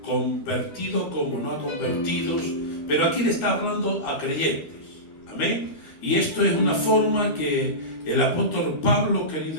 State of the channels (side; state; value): right; late; 13 ms